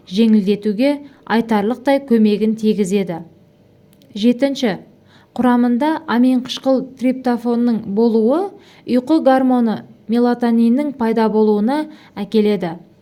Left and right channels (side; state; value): both; identical; correlation 1.00